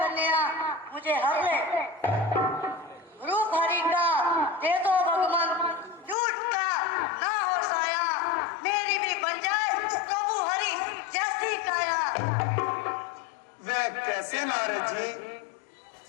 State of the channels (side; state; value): right; drops out; at 6.2 s